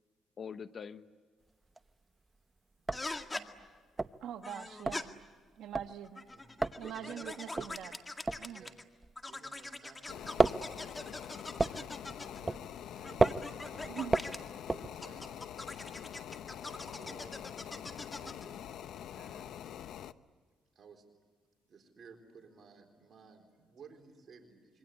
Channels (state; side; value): normal; both; correlation 0.90